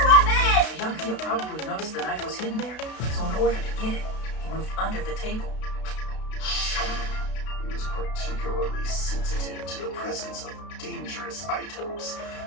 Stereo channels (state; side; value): late; right; 32 ms